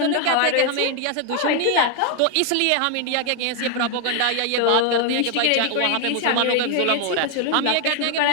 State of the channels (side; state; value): both; different; correlation 0.01